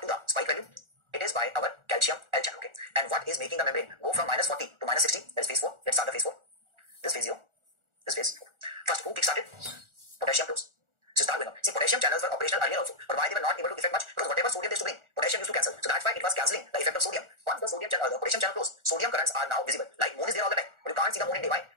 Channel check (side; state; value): left; late; 1.4 ms